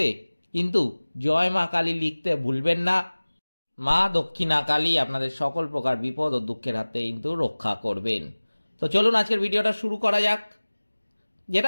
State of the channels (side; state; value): both; inverted; correlation -1.00